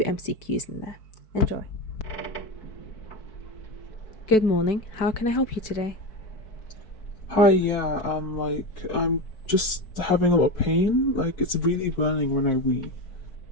in there. Enjoy. Good morning. How can I help you today? Hi, yeah, I'm just having a lot of pain. Like, it's really burning when I wee.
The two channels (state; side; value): late; right; 4.6 ms